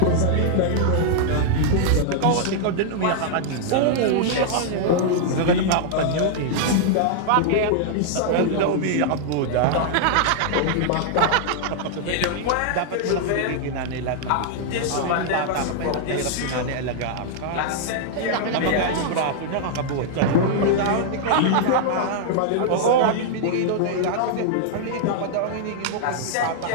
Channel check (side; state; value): both; different; correlation -0.01